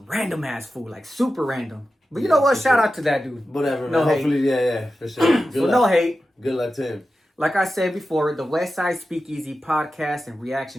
random ass food, like super random. But you know what? Shout out to that dude. Whatever, No man. hate. Hopefully, yeah, for sure. Good So luck. no hate. Good luck to him. Like I said before, the Westside Speakeasy podcast and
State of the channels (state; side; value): normal; both; correlation 0.93